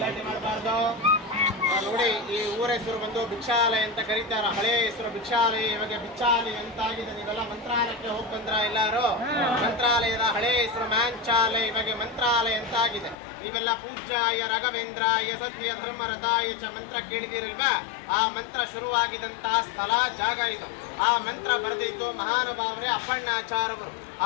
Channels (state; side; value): drops out; right; at 13.2 s